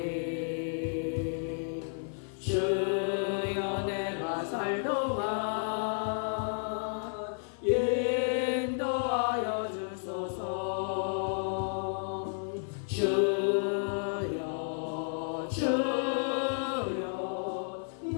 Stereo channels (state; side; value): silent; right; 56 dB below the other